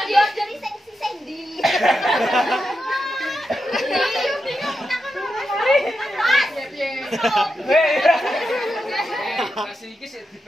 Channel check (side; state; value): both; normal; correlation 0.87